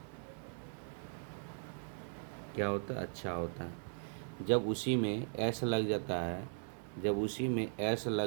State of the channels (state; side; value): silent; left; 52 dB below the other